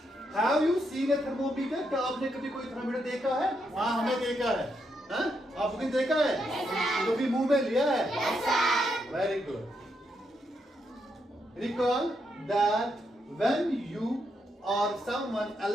Have you seen a thermometer? क्या आपने कभी कोई थर्मोमीटर देखा है? हाँ, हमने देखा है। आपने देखा है? कभी मुंह में लिया है? Very good. Recall that when you or someone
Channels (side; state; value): both; normal; correlation 0.80